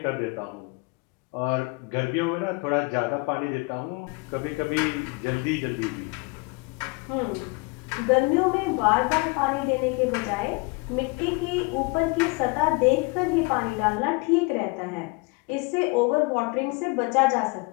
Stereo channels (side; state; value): right; quieter; 28.2 dB